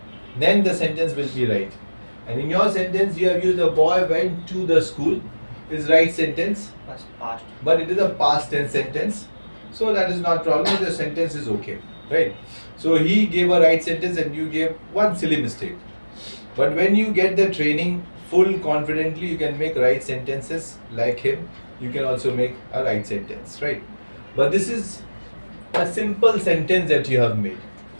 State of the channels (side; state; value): both; inverted; correlation -1.00